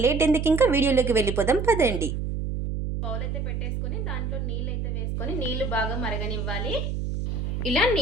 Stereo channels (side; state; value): right; noise; hum, 2 dB below the sound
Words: లేట్ ఎందుకు, ఇంకా వీడియోలోకి వెళ్ళిపోదాం పదండి. బౌల్ అయితే పెట్టేసుకొని దాంట్లో నీళ్ళు అయితే వేసుకొని నీళ్లు బాగా మరగనివ్వాలి. ఇలా